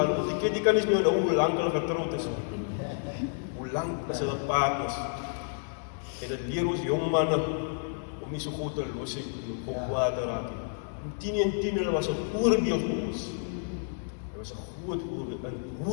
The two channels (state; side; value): silent; right; digital silence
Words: want die Ketty kan nie meer nou hoe lang hulle getrouwd is. Hoe lang is hulle partners? En dit leer ons jong manne om nie so goed te los het en op kwaad te raak. Tini hulle was 'n voorbeeld vir ons. Hy was 'n groot voorbeeld in